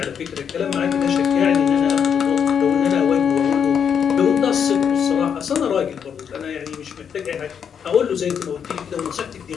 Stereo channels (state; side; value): quieter; right; 7.6 dB